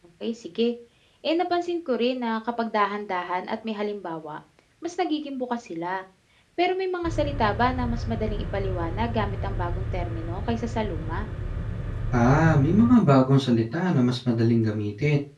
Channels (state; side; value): identical; both; correlation 1.00